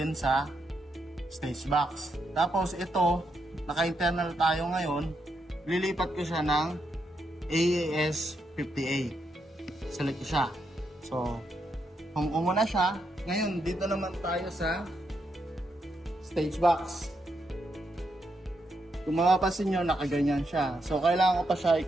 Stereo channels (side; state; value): both; normal; correlation 0.81